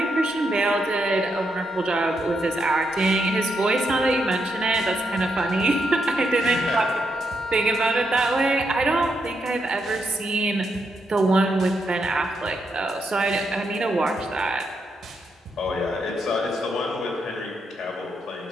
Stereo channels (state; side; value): normal; both; correlation 0.81